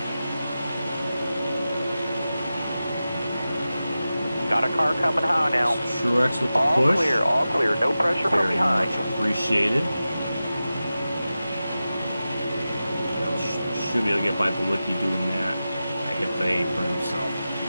Got a car coming high now. Truex with the All push. all clear. No pressure from Very behind. much appreciated. Should be able to get by Bawicki doing that. I hit the apron, so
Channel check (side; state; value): both; inverted; correlation -0.94